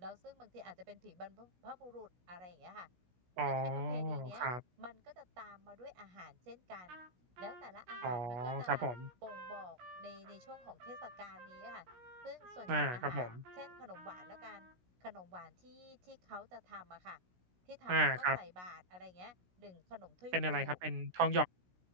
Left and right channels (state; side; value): late; left; 16 ms